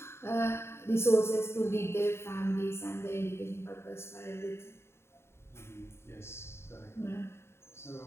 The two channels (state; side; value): late; right; 0.12 ms